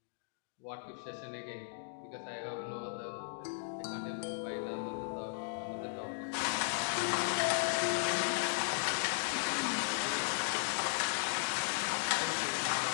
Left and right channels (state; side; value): silent; right; digital silence